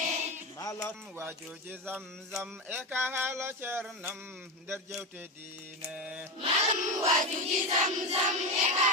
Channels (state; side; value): normal; both; correlation 0.16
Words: malam wajuji zamzam e ka haala ceernam nder jewte diine malam wajuji zamzam e ka